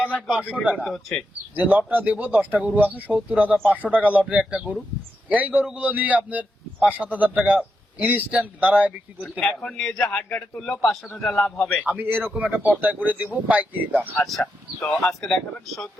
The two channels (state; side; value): normal; both; correlation 0.84